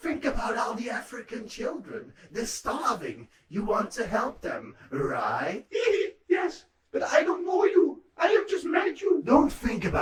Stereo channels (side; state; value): both; identical; correlation 1.00